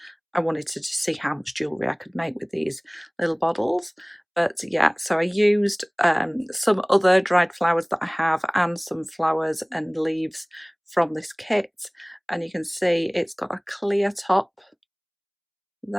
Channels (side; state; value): both; identical; correlation 1.00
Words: I wanted to just see how much jewellery I could make with these little bottles. But yeah, so I used some other dried flowers that I have and some flowers and leaves from this kit. And you can see it's got a clear top